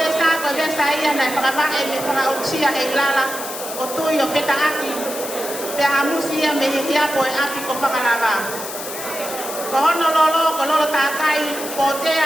ko besa ia na pagaba e me pagausia e lala o tui o feta aki pe amusia me hia po e api ko pagalaba ko hono lolo ko lolo takai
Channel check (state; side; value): noise; left; hiss, 9 dB below the sound